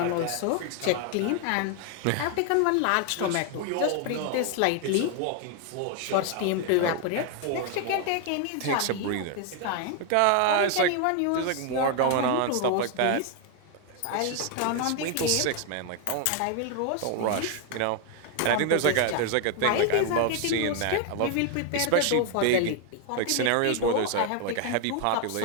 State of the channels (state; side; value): different; both; correlation 0.01